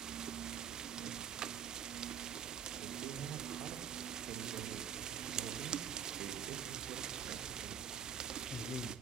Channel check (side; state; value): left; quieter; 7.8 dB